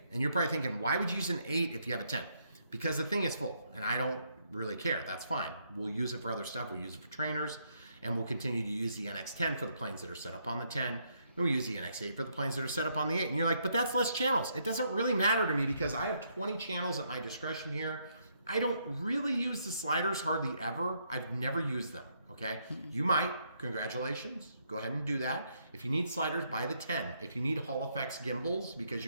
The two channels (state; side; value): inverted; both; correlation -0.74